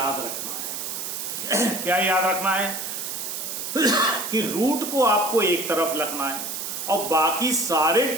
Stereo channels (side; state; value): right; noise; hiss, 5 dB below the sound